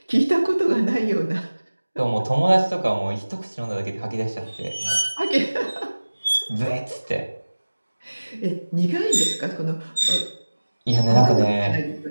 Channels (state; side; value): inverted; both; correlation -1.00